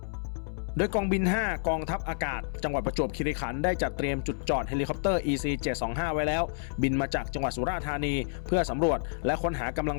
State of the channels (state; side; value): silent; right; 58 dB below the other